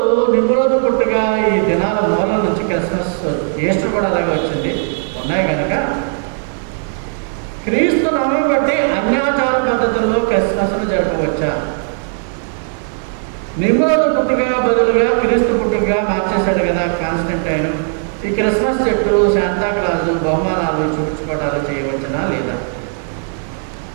నిమ్రోజు పుట్టుగా ఈ దినాల మూలం నుంచి క్రిస్మస్, ఈస్టర్ కూడా అలాగే వచ్చింది ఉన్నాయి కనుక క్రీస్తు నామం బట్టి అన్యాచార పద్ధతుల్లో క్రిస్మస్ను జరపవచ్చా? నిమ్రోజు పుట్టుగా బదులుగా క్రీస్తు పుట్టుగా మార్చేశాడు కదా కాన్స్టంటైన్. ఈ క్రిస్మస్ చెట్టు, శాంతాక్లాజు, బహుమానాలు, చూపించుకోవడాలు చేయవచ్చునా లేదా?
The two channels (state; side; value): silent; left; 58 dB below the other